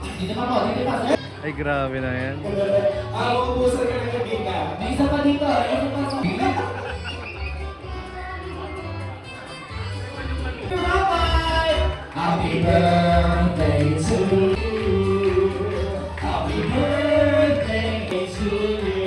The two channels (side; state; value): both; identical; correlation 1.00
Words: Dito pa po. Dito pa. Ay, grabe na yan. Ubusan ka ng kaibigan. May isa pa dito. Isa pa sa Rabbi! Happy birthday to you. Happy birthday to